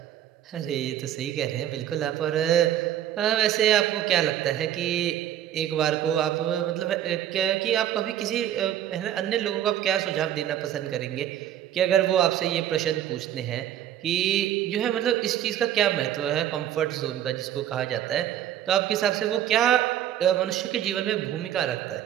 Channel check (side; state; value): left; quieter; 11.2 dB